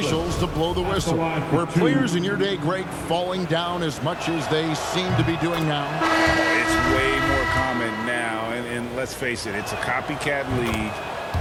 to blow the whistle. Were players in your day, Greg, falling down as much as they seem to be doing now? It's way more common now, and let's face it, it's a copycat league.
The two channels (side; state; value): both; identical; correlation 1.00